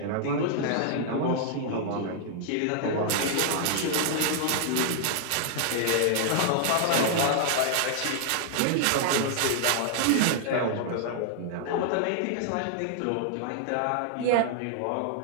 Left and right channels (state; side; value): different; both; correlation -0.01